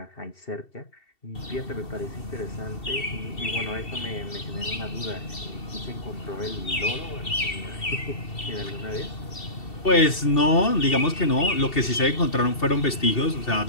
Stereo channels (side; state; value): right; late; 2.7 ms